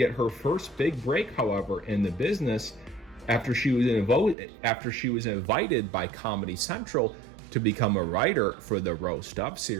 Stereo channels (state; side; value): drops out; left; at 4.4 s